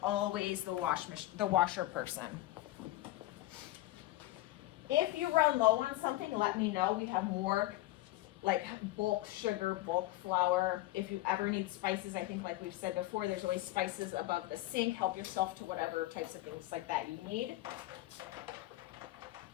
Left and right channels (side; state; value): right; quieter; 16.8 dB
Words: always the washer person. If you run low on something, let me know. We have more like bulk sugar, bulk flour. If you ever need spices, I think like we've said before, there's always spices above the sink. Help yourself to whatever types of things like that you need.